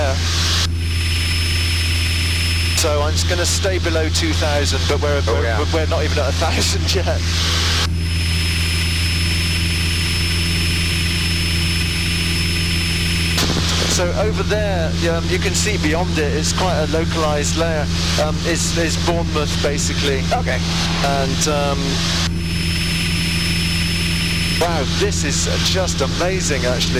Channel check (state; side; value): identical; both; correlation 1.00